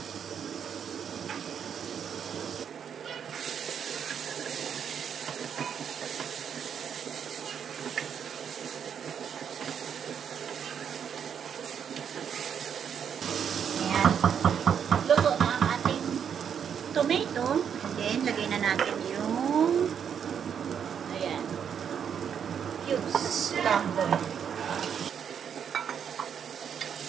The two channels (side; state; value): left; quieter; 7.9 dB